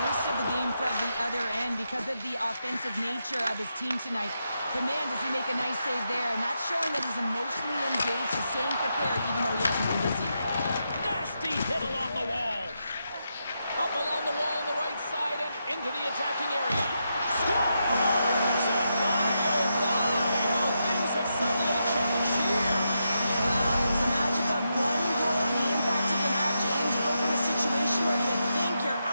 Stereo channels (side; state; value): both; inverted; correlation -0.84